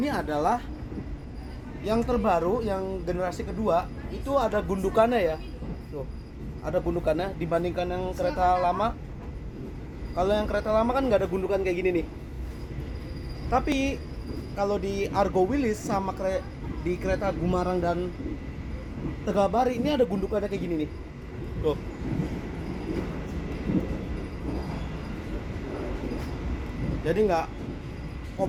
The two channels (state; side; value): identical; both; correlation 1.00